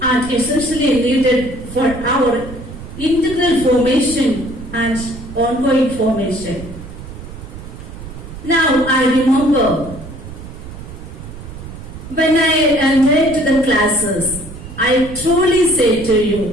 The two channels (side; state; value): right; noise; rumble, 13 dB below the sound